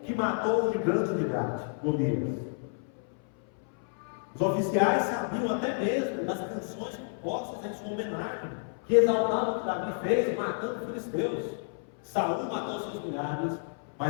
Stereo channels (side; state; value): right; silent; 58 dB below the other